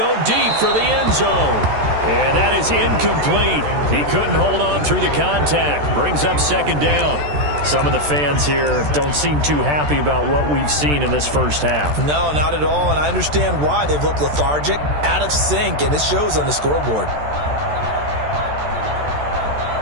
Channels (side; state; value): left; late; 14 ms